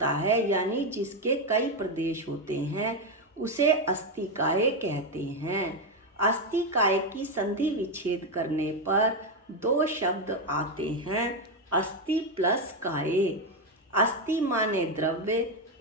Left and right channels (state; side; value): normal; both; correlation 0.07